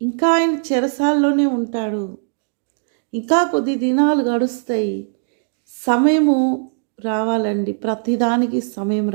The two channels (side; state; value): left; silent; digital silence